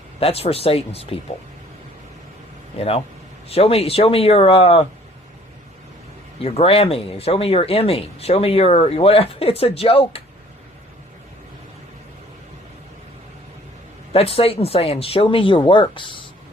That's for Satan's people. Show me your Grammy. Show me your Emmy. Show me your whatever. It's a joke. That's Satan saying, show me your works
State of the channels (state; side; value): normal; both; correlation 0.55